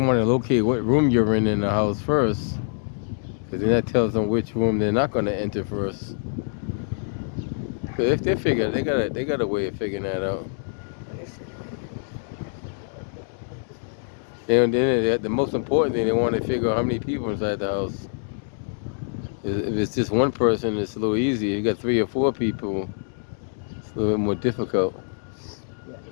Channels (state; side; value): silent; right; 62 dB below the other